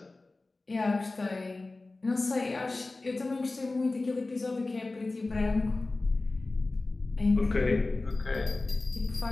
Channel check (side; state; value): right; quieter; 3.2 dB